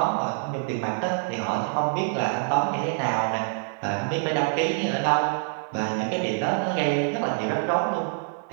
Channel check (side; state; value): left; silent; 61 dB below the other